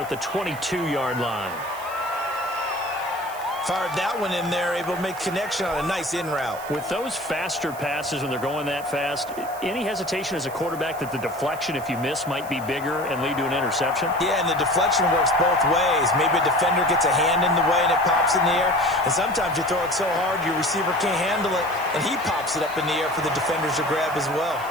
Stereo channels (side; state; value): right; noise; hiss, 18 dB below the sound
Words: the 22-yard line. Fired that one in there, able to make connection on a nice in route. With those faster passes when they're going that fast, any hesitation as a quarterback that the deflection, if you miss, might be bigger and lead to an interception? Yeah, and the deflection works both ways. Maybe a defender gets a hand in the way and it pops in the air. And sometimes you throw it so hard your receiver can't handle it, and he pops it up in the air for the defenders to grab as well.